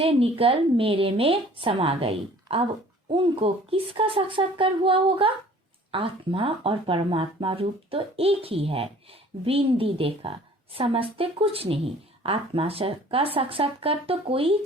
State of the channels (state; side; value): normal; both; correlation 0.51